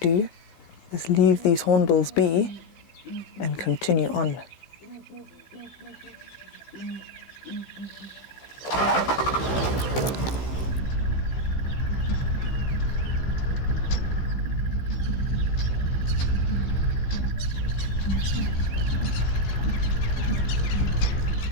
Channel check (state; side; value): late; right; 15 ms